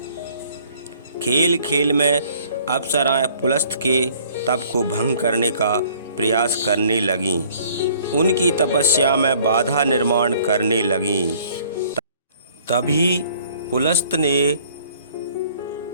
खेल खेल में अप्सराएं पुलस्त्य के तप को भंग करने का प्रयास करने लगीं। उनकी तपस्या में बाधा निर्माण करने लगीं। तभी पुलस्त्य ने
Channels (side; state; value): both; inverted; correlation -0.57